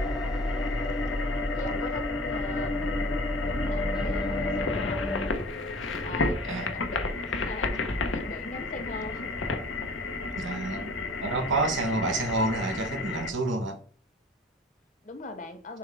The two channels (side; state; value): both; normal; correlation 0.43